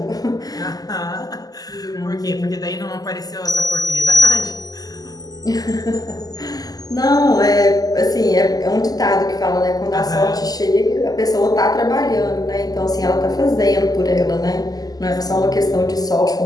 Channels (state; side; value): late; right; 0.18 ms